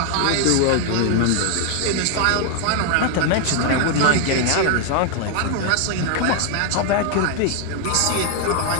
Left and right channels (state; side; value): different; both; correlation 0.00